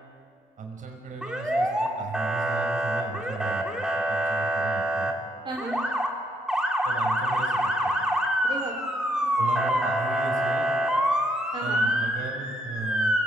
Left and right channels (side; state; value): both; normal; correlation 0.73